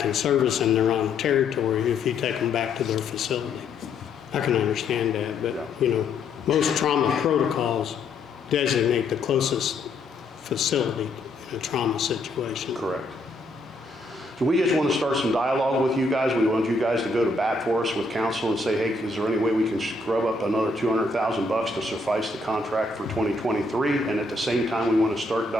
in service in their own territory if you take them back to their facility. I can understand that, but most trauma protocols designate the closest facility in a trauma situation. Correct. So we just want to start some dialogue with you guys. We want you guys to go to bat for us with council and say, hey, is there any way we can scrub up another $200,000 to suffice the contract for 2023? And at the same time, we want to start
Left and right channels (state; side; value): quieter; right; 3.3 dB